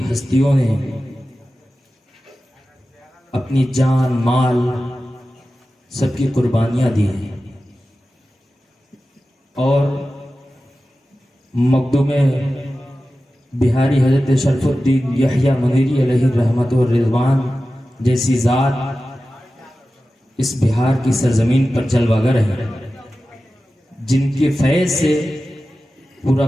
ہستیوں نے اپنی جان مال سب کی قربانیاں دی ہیں، اور مقدوم بہاری حضرت شرف الدین یحییٰ منیری علیہ رحمت و رضوان جیسی ذات اس بہار کی سرزمین پر جلوہ گر ہیں، جن کے فیض سے پورا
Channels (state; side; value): normal; both; correlation 0.94